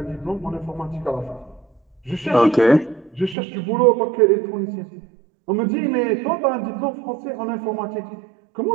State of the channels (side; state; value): left; drops out; at 3.4 s